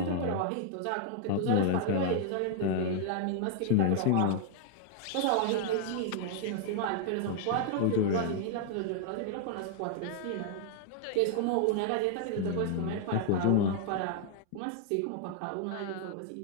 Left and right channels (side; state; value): both; different; correlation 0.00